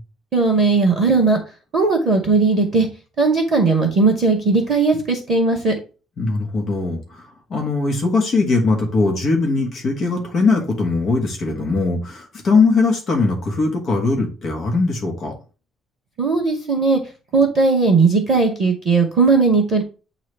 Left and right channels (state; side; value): normal; both; correlation 0.45